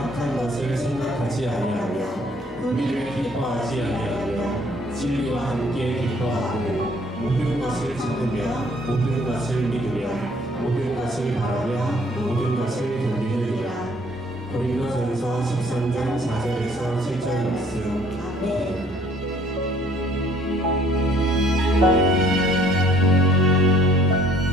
것을 생각하지 아니하며 불의를 기뻐하지 아니하며 진리와 함께 기뻐하고 모든 것을 참으며 모든 것을 믿으며 모든 것을 바라며 모든 것을 견디느니라. 고린도전서 13장 4절에서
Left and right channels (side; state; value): both; normal; correlation 0.60